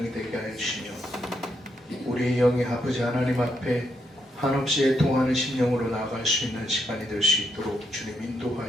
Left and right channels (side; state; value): both; normal; correlation 0.79